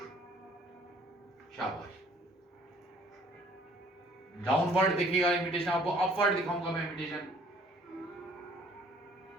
शाबाश। डाउनवर्ड देखिएगा इमिटेशन, आपको अपवर्ड दिखाऊंगा मैं इमिटेशन।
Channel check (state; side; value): normal; both; correlation 0.57